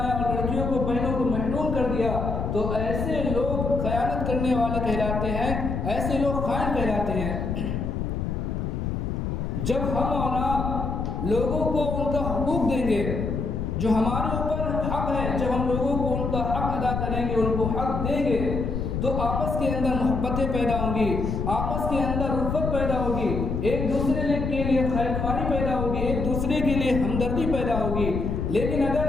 اور لڑکیوں کو، بہنوں کو محروم کر دیا تو ایسے لوگ خیانت کرنے والے کہلاتے ہیں، ایسے لوگ خائن کہلاتے ہیں. جب ہم اور آپ لوگوں کو ان کا حقوق دیں گے، جو ہمارے اوپر حق ہے، جب ہم لوگوں کو ان کا حق ادا کریں گے، ان کو حق دیں گے تو آپس کے اندر محبتیں پیدا ہوں گی، آپس کے اندر الفت پیدا ہوگی، ایک دوسرے کے لیے خیر خواہی پیدا ہوگی، ایک دوسرے کے لیے ہمدردی پیدا ہوگی. لیکن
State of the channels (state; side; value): noise; left; rumble, 2 dB below the sound